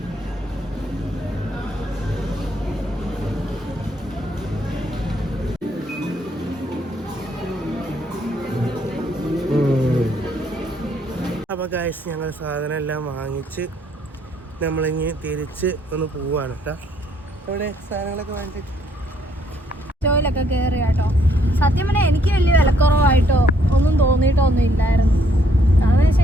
അപ്പോൾ ഗൈസ് ഞങ്ങൾ സാധനം എല്ലാം വാങ്ങിച്ച് നമ്മളിങ്ങ് തിരിച്ച് ഒന്ന് പോവാണ് കേട്ടോ. ഇവിടെ സാധനങ്ങളൊക്കെ വാങ്ങിച്ചിട്ട് സ്റ്റോയിലൊക്കെ കയറി കേട്ടോ. സത്യം പറഞ്ഞാൽ എനിക്ക് വലിയ വിലക്കുറവായിട്ടോ ഒന്നും തോന്നിയിട്ടോ ഒന്നും ഇല്ലായിരുന്നു. കാരണം വെച്ച്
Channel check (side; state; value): both; normal; correlation 0.68